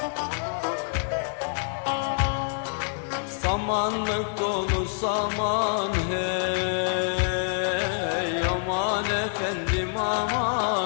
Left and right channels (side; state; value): right; silent; digital silence